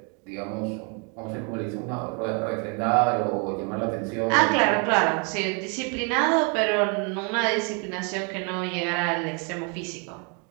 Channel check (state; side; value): quieter; left; 35.7 dB